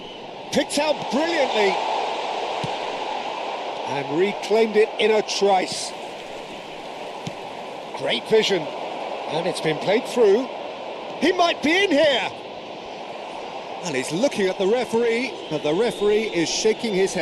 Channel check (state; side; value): identical; both; correlation 1.00